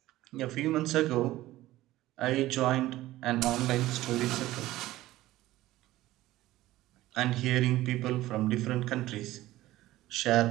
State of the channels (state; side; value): quieter; left; 16.2 dB